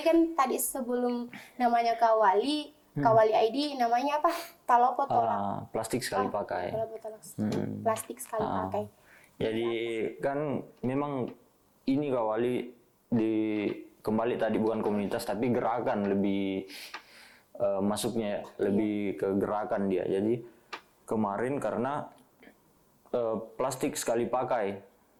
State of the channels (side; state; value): both; identical; correlation 1.00